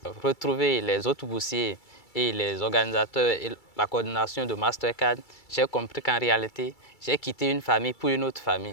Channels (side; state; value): right; late; 2.3 ms